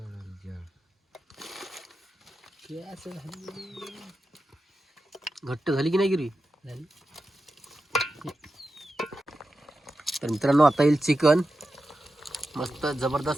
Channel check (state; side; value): normal; both; correlation 0.91